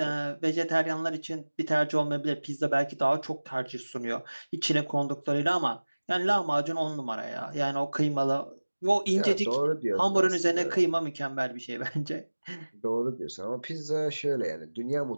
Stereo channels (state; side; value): inverted; both; correlation -1.00